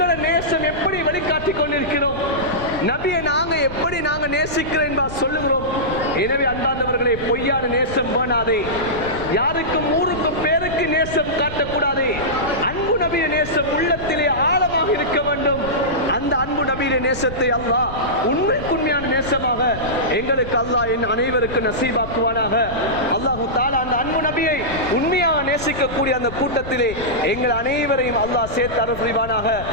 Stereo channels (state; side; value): noise; left; rumble, 11 dB below the sound